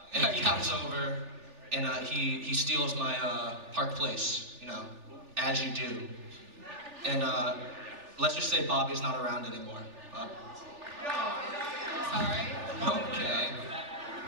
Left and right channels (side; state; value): left; late; 3.4 ms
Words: And he comes over, and he steals my Park Place, you know, as you do. And let's just say Bobby's not around anymore. Sorry. Okay.